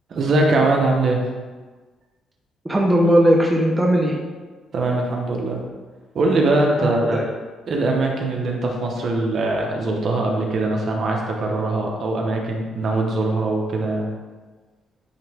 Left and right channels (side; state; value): both; normal; correlation 0.79